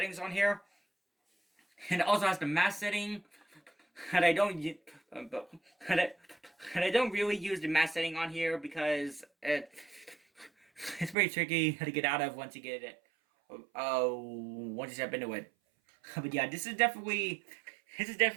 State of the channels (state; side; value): drops out; left; at 11.2 s